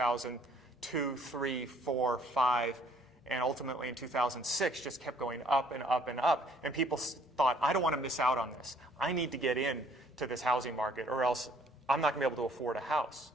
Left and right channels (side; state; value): both; normal; correlation 0.61